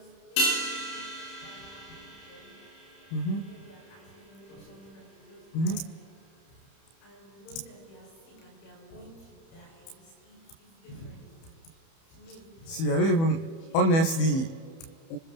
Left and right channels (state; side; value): late; right; 31 ms